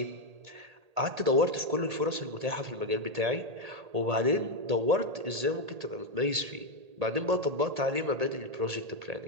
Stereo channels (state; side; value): late; left; 1.8 ms